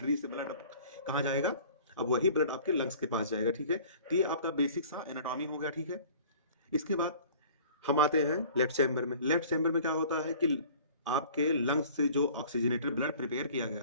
से ब्लड कहाँ जाएगा, अब वही ब्लड आपके लंग्स के पास जाएगा, ठीक है। तो ये आपका बेसिक सा एनाटॉमी हो गया, ठीक है। इसके बाद हम आते हैं लेफ्ट चैम्बर में। लेफ्ट चैम्बर में क्या होता है कि आपके लंग्स से जो ऑक्सीजनेटेड ब्लड प्रिपेयर किया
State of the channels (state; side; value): inverted; both; correlation -0.48